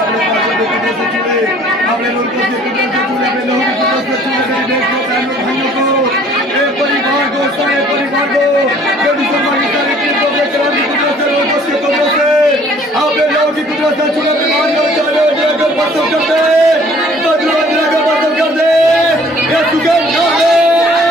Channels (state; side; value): normal; both; correlation 0.56